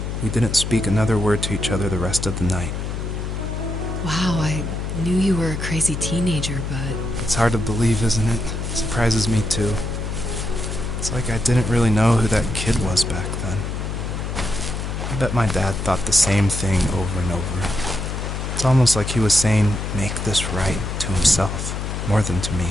We didn't speak another word to each other the rest of the night. Wow, I knew you were a crazy teenager, but... It's hard to believe, isn't it? It surprises me too. It's like I didn't really know who that kid was back then. I bet my dad thought the same thing over and over. It's almost like he was saying, "Make this right," to himself, more than to me.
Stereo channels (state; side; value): noise; left; hum, 4 dB below the sound